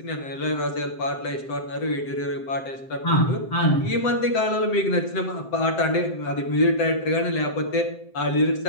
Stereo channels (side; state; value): right; late; 7.7 ms